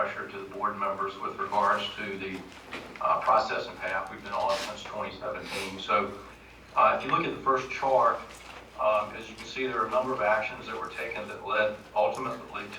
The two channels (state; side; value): identical; both; correlation 1.00